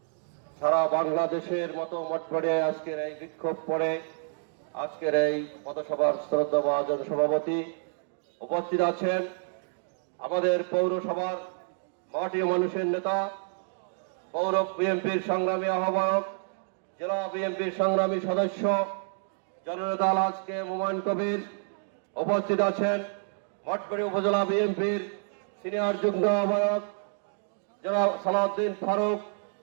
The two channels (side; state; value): left; silent; digital silence